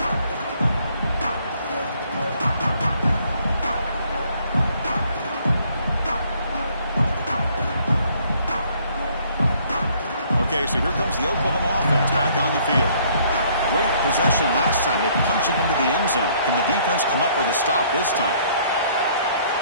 Okay, so here comes the Oklahoma offense back on the field. Great possession last time. They punch it into the end zone. Can the defense come up with a stop this time?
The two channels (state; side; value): inverted; both; correlation -0.62